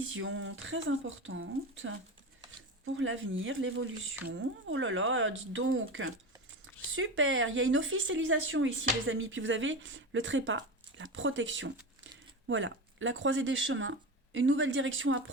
très importante pour l'avenir, l'évolution. Oh là là, dites donc, super, il y a une officialisation ici, les amis. Puis vous avez le trépas, la protection. Voilà, la croisée des chemins, une nouvelle direction à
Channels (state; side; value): normal; both; correlation 0.24